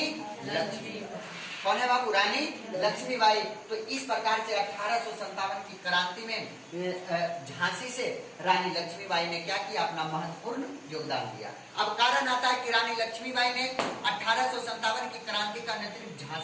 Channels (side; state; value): both; identical; correlation 1.00